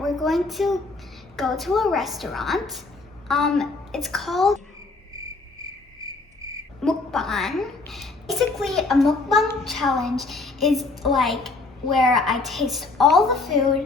going to go to a restaurant. It's called Mukbang. Basically, a mukbang challenge is like where I taste all the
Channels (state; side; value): quieter; right; 3.6 dB